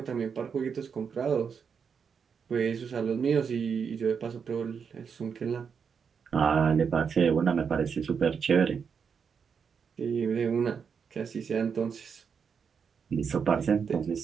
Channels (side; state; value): left; quieter; 6.4 dB